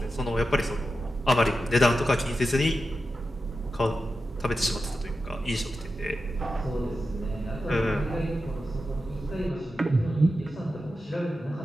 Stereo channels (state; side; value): normal; both; correlation 0.91